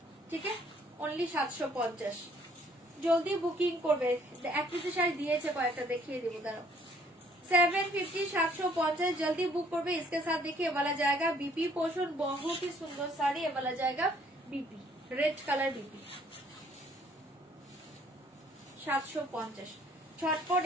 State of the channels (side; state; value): both; normal; correlation 0.62